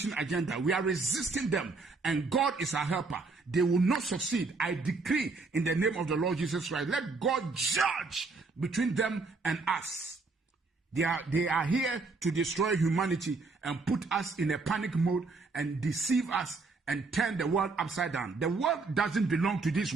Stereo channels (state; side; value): quieter; left; 3.9 dB